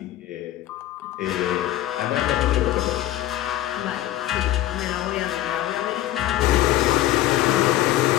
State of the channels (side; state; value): right; quieter; 14.0 dB